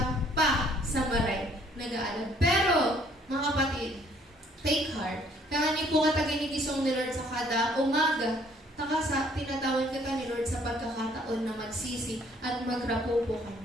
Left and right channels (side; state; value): both; normal; correlation 0.62